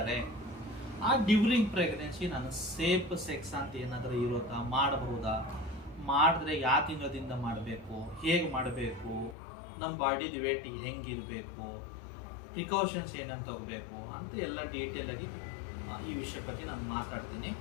ಆ ಡ್ಯೂರಿಂಗ್ ಪ್ರೆಗ್ನೆನ್ಸಿ ನಾನು ಸೇಫ್ ಸೆಕ್ಸ್ ಅಂತ ಏನಾದರೂ ಇರುತ್ತಾ, ಮಾಡಬಹುದಾ, ಮಾಡಿದ್ರೆ ಯಾವ ತಿಂಗಳದಿಂದ ಮಾಡಬೇಕು, ಹೇಗೆ ಮಾಡಬೇಕು, ನಮ್ಮ ಬಾಡಿದು ವೇಟ್ ಹೆಂಗಿರಬೇಕು, ಪ್ರಿಕಾಷನ್ಸ್ ಏನಂತ ತಗೋಬೇಕು ಅಂತ ಎಲ್ಲ ಡೀಟೇಲಾಗಿ ಈ ವಿಷಯ ಬಗ್ಗೆ ನಾನು ಮಾತಾಡ್ತೀನಿ.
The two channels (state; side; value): drops out; right; at 9.3 s